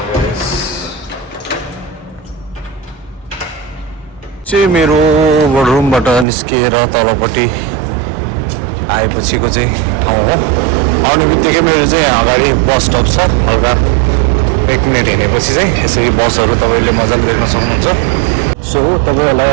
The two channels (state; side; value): drops out; left; at 6.2 s